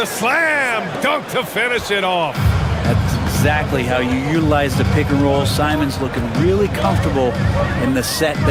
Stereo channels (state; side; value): identical; both; correlation 1.00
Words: slam dunk to finish it off. That's exactly how you utilize the pick and roll. Simons looking really comfortable in the set